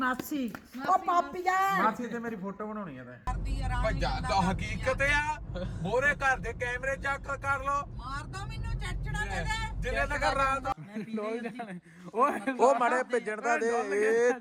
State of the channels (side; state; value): both; identical; correlation 1.00